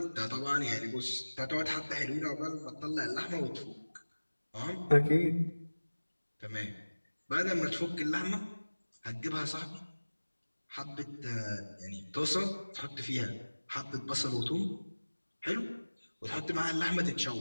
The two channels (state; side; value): inverted; both; correlation -1.00